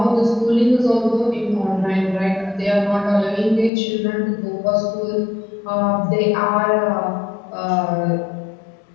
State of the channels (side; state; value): right; drops out; at 3.7 s